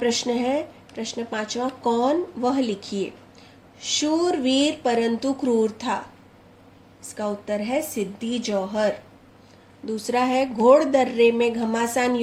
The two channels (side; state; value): both; identical; correlation 1.00